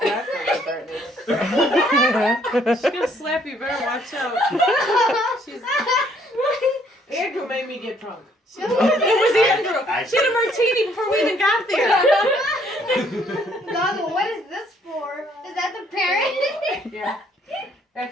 a good birthday. She's gonna slap you. Better watch out. She's. Andrew made me get drunk. It was Andrew. She had a martini before we even got there. Goggle, what is this for? Is that the parent? Yeah.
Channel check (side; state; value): both; normal; correlation 0.65